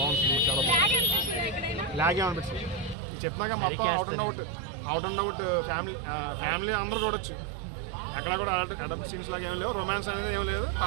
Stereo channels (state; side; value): drops out; left; at 3.0 s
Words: సినిమా, చాలా బాగుంది. లాగే అనిపించింది చెప్పినాక మొత్తం అవుట్ అండ్ అవుట్ ఫ్యామిలీ అందరూ చూడొచ్చు. ఎక్కడ కూడా అడల్ట్ సీన్స్ లాగా ఏం లేవు, రొమాన్స్ అనేది ఏం లేదు,